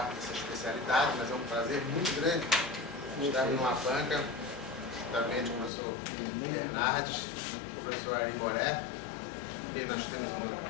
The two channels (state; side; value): drops out; right; at 5.7 s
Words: dessa especialidade, mas é um prazer muito grande estar numa banca, juntamente com o professor Bernardes, o professor Ari Moré, que nós temos